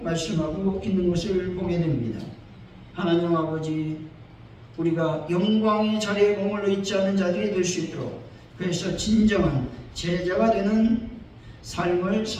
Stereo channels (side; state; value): both; identical; correlation 1.00